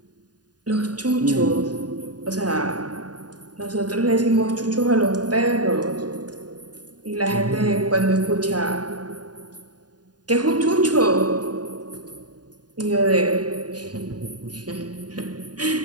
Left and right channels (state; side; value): late; left; 0.69 ms